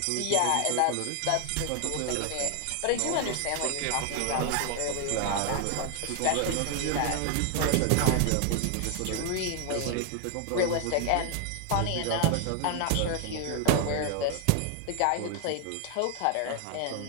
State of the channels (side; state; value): both; different; correlation 0.00